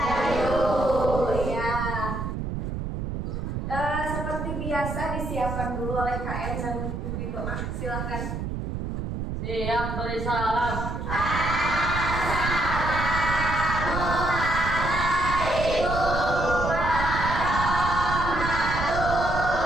Ya. Seperti biasa disiapkan dulu oleh KM dan pimpin doa. Silakan. Siap beri salam.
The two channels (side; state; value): right; noise; rumble, 4 dB below the sound